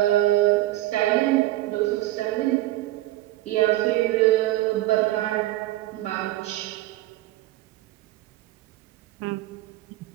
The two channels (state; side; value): quieter; left; 16.5 dB